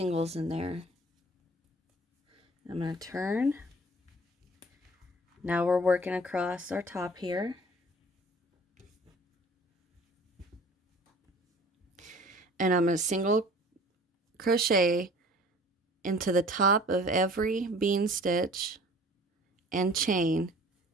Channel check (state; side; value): normal; both; correlation 0.48